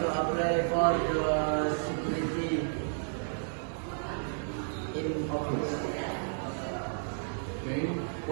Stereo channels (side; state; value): left; silent; 56 dB below the other